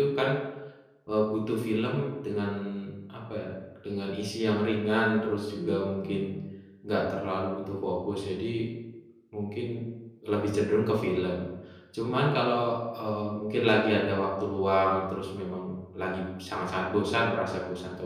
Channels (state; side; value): identical; both; correlation 1.00